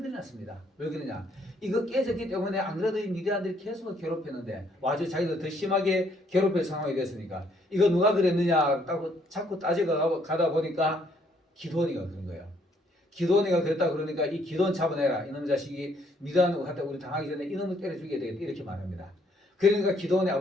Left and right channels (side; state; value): both; normal; correlation 0.68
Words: 났습니다. 왜 그러냐? 이거 깨졌기 때문에 안 그래도 이 미디안들이 계속 괴롭혔는데 아주 자기들 더 심하게 괴롭힐 상황이 됐으니까 이거 누가 그랬느냐 자꾸 따지고 가다 보니까 기드온이가 그런 거예요. 기드온이가 그랬다 그러니까 이 기드온 잡아내라. 이놈 자식이 미디안으로 갔다 우리 당하기 전에 이놈을 때려 죽여야 되겠다 이렇게 말합니다. 그러니까 기드온의